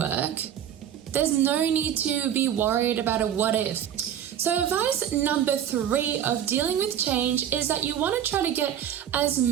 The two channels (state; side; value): quieter; left; 9.9 dB